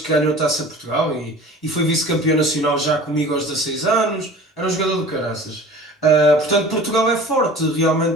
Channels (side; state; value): both; normal; correlation 0.42